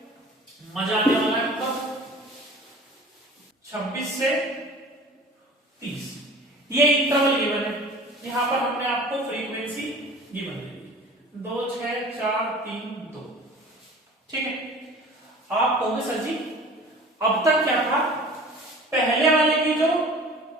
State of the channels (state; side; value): normal; both; correlation 0.43